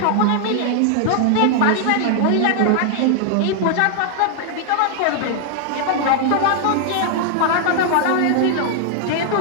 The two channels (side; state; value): both; different; correlation 0.00